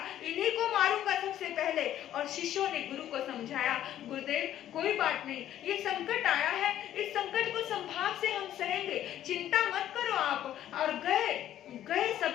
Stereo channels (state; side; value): quieter; right; 11.8 dB